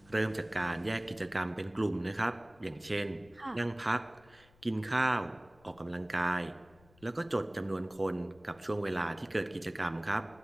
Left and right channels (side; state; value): left; noise; rumble, 27 dB below the sound